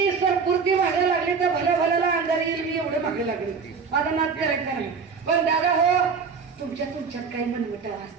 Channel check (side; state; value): left; quieter; 5.5 dB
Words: सरपुरती मागे लागली तर भल्याला अंधार येईल, मी एवढं मागे लागले. माझा नाद करायचा नाही. पण दादा हो, तुमच्यात काही मनमटाव